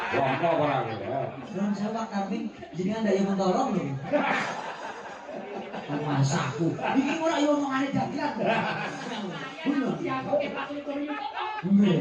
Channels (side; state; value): both; identical; correlation 1.00